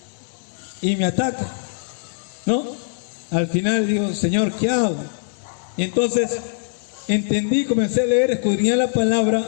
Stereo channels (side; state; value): right; silent; digital silence